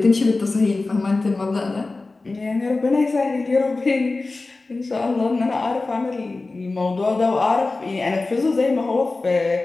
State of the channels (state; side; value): quieter; right; 3.4 dB